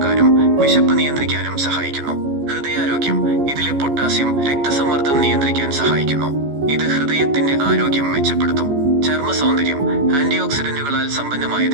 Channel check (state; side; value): late; left; 14 ms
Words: വിശപ്പ് നിയന്ത്രിക്കാനും സഹായിക്കുന്നു. ഹൃദയാരോഗ്യം. ഇതിലെ പൊട്ടാസ്യം രക്തസമ്മർദ്ദം നിയന്ത്രിക്കാൻ സഹായിക്കുന്നു. ഇത് ഹൃദയത്തിന്റെ ആരോഗ്യം മെച്ചപ്പെടുത്തും. ചർമ്മ സൗന്ദര്യം. ആന്റി ഓക്സിഡന്റുകളാൽ